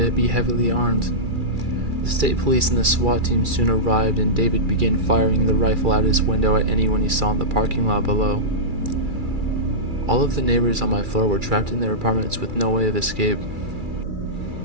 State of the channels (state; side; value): late; left; 2.4 ms